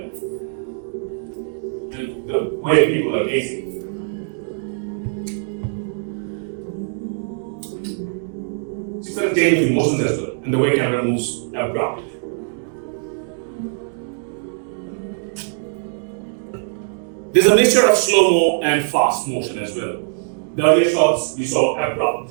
And the way people are gazing. She started changing emotions as well, and the way camera moves abrupt. There's a mixture of slow-mo and fast motion as well. The earlier shots you saw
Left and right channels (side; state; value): left; silent; digital silence